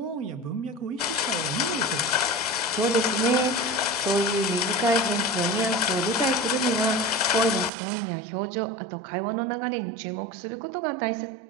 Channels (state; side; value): drops out; left; at 7.7 s